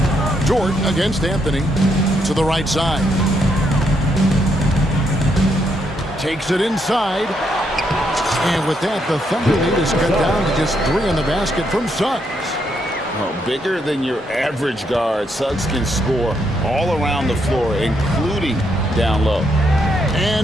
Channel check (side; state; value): both; normal; correlation 0.76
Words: Jordan against Anthony to the right side. Takes it inside. And with that, the Thunder lead is cut down to just 3 in the basket from Suggs. Well, bigger than your average guard, Suggs can score all around the floor, including down low.